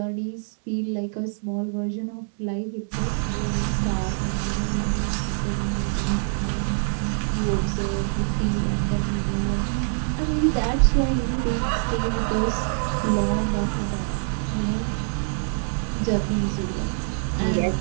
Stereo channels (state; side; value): silent; left; 62 dB below the other